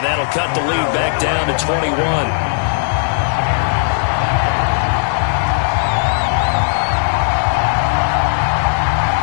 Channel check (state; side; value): silent; right; digital silence